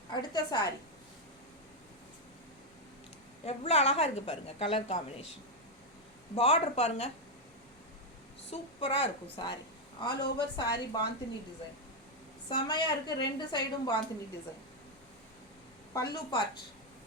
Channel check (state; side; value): normal; both; correlation 0.03